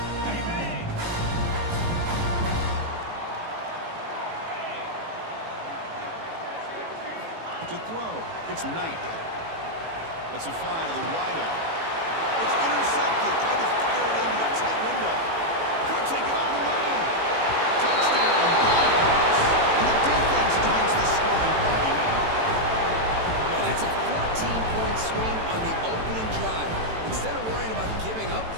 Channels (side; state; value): left; late; 18 ms